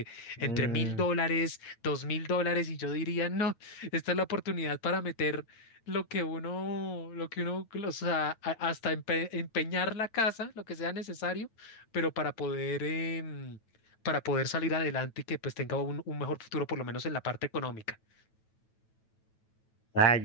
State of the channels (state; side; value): late; right; 9.1 ms